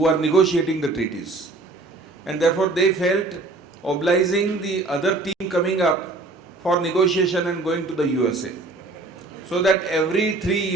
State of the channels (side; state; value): left; quieter; 3.3 dB